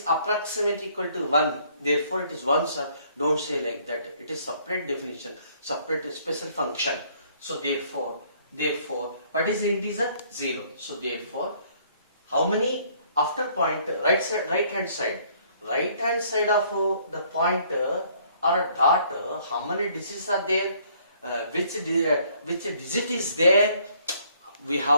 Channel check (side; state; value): both; inverted; correlation -0.62